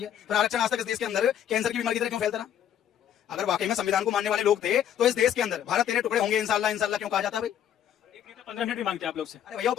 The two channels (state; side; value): quieter; right; 10.0 dB